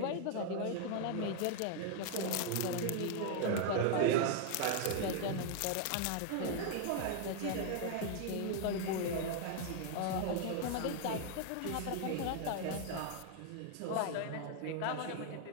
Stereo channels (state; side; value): different; both; correlation 0.00